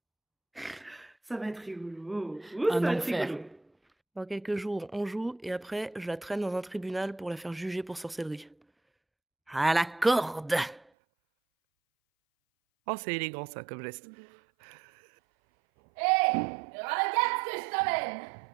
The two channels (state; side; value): drops out; left; at 10.9 s